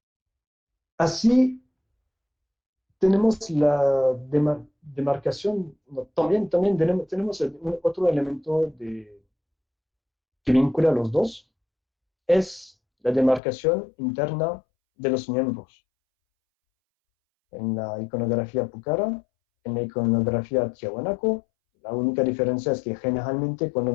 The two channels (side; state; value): right; drops out; at 13.4 s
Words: Así tenemos la demarcación, también tenemos otro elemento que vincula a los dos, es la demarcación interna de los miembros. En la iconografía Pucara, en la iconografía Tiahuanaco, la única diferencia es que generalmente